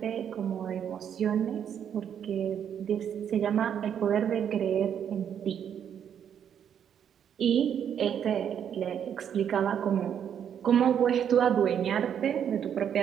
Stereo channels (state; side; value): quieter; left; 8.7 dB